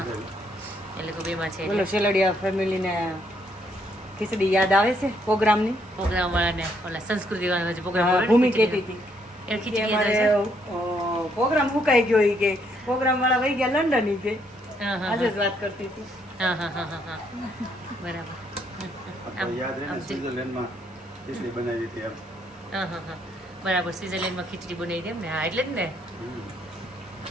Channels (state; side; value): normal; both; correlation 0.71